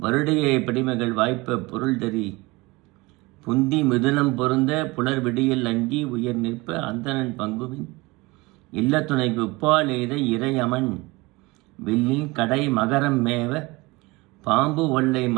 படிமகள் வாய்ப்ப பொருள் தறி புந்தி மிதுனம் பொருந்த புலர் விடியல் அங்கி உயர் நிற்ப அந்தணன் பங்குவின் இல்லத்துணைக்கு உப்பால் எய்த இறையமன் வில்லில் கடை மகரம் மேவ பாம்பு ஒல்லை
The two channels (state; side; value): quieter; left; 23.2 dB